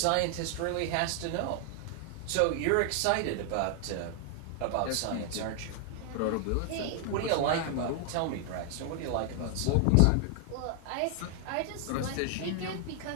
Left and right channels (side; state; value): both; different; correlation 0.00